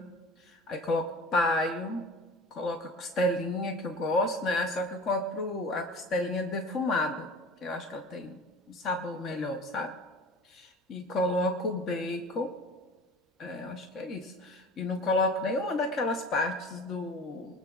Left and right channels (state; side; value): normal; both; correlation 0.39